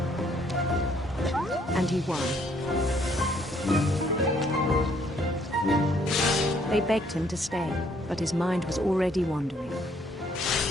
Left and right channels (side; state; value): both; normal; correlation 0.66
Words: And he won. They begged him to stay, but his mind was already wandering.